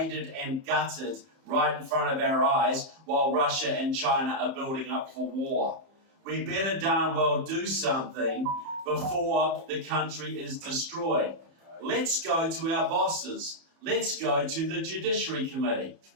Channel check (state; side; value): late; left; 31 ms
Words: and gutted right in front of our eyes while Russia and China are building up for war. We better darn well do something before the country is destroyed. Let's go to our bosses. Let's go to the Judiciary Committee.